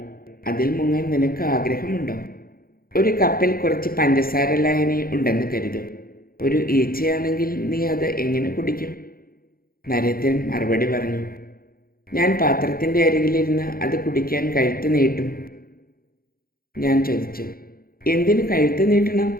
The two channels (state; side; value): late; right; 0.43 ms